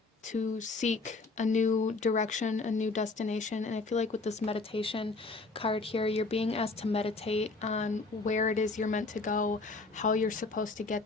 seek a new direction, a new destination. And I feel like with this meditation card here, you're being asked to meditate on where it is you're meant to go, how you're supposed to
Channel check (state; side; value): quieter; right; 3.7 dB